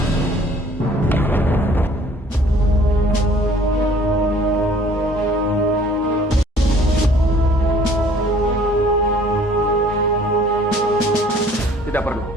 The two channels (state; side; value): normal; both; correlation 0.56